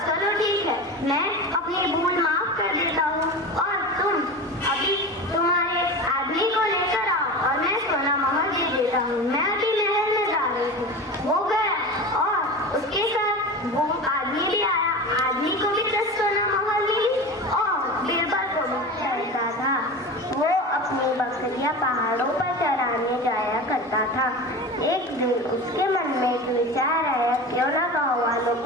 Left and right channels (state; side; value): normal; both; correlation 0.29